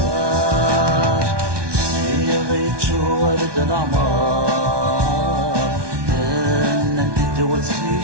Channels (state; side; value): late; left; 1.2 ms